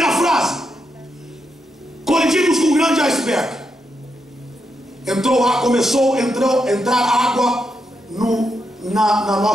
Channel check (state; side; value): normal; both; correlation 0.83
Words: frase: colidimos com um grande iceberg. Começou a entrar água na